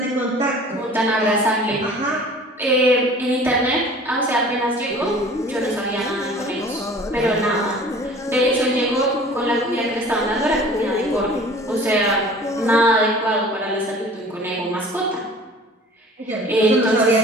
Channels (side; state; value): both; normal; correlation 0.46